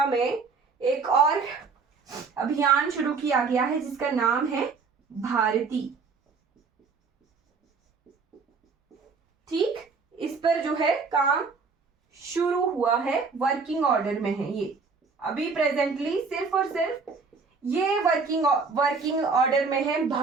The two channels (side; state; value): left; quieter; 4.8 dB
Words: में एक और अभियान शुरू किया गया है जिसका नाम है भारती। ठीक, इस पर जो है काम शुरू हुआ है, वर्किंग ऑर्डर में है ये अभी प्रेजेंटली, सिर्फ और सिर्फ ये वर्किंग ऑर्डर में है